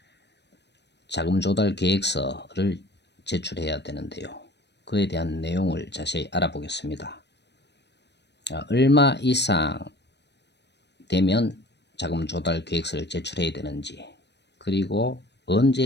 자금 조달 계획서를 제출해야 되는데요. 그에 대한 내용을 자세히 알아보겠습니다. 얼마 이상 되면 자금 조달 계획서를 제출해야 되는지, 그리고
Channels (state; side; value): late; right; 0.50 ms